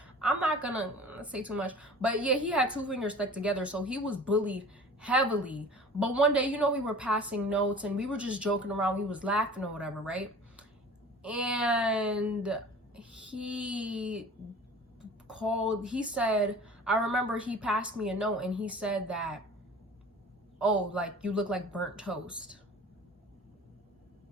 I'm not gonna say too much, but yeah, he had 2 fingers stuck together, so he was bullied heavily. But one day, we were passing notes and we were just joking around, we was laughing or whatever, right? And he said, I remember he passed me a note, and he said that, oh, like, you look like burnt toast.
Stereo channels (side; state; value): both; normal; correlation 0.43